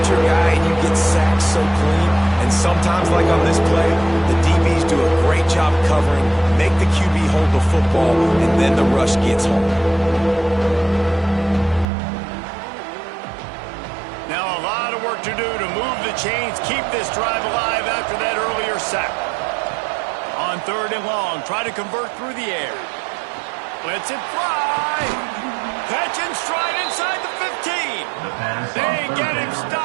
your guy and you get sacked so clean. And sometimes, like on this play, the DBs do a great job covering, make the QB hold the football, and then the rush gets home. Now a lot of work to do to move the chains, keep this drive alive after that earlier sack. On 3rd and long, try to convert through the air. Lets it fly. Catch and stride inside the 15. They get him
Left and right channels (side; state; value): left; drops out; at 11.9 s